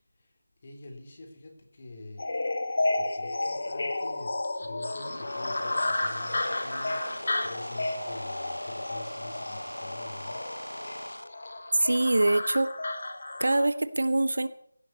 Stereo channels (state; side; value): inverted; both; correlation -0.97